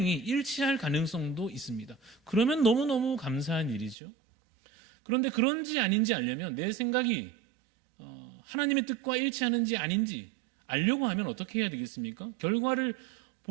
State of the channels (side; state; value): left; drops out; at 4.0 s